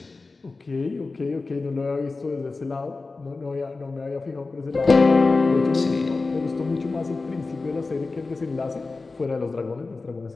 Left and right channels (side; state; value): right; quieter; 3.7 dB